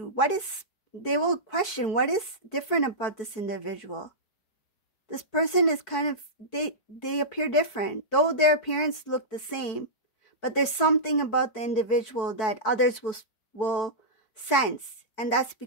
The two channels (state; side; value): late; right; 4.6 ms